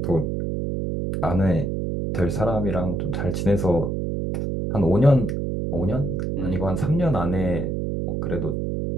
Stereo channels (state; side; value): noise; right; hum, 1 dB below the sound